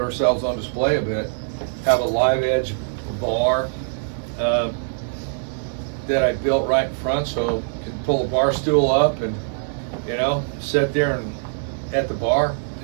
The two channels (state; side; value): silent; left; 60 dB below the other